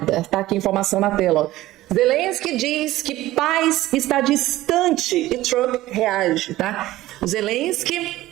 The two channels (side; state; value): left; quieter; 16.2 dB